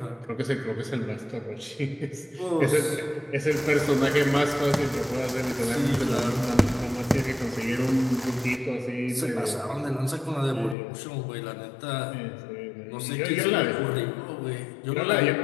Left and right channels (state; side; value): drops out; right; at 10.8 s